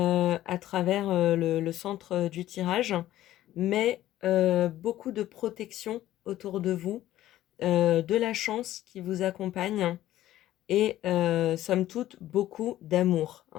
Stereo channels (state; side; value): quieter; right; 13.9 dB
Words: travers le centre du tirage, mais beaucoup de protection autour de vous, de la chance qui vous accompagne et somme toute beaucoup d'amour,